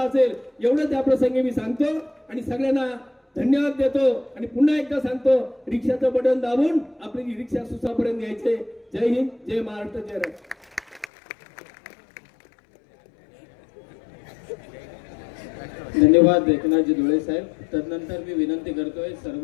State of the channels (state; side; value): drops out; right; at 11.1 s